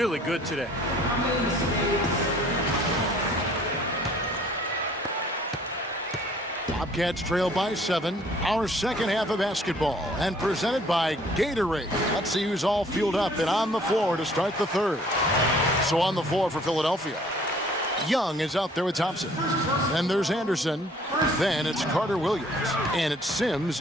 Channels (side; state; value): both; normal; correlation 0.57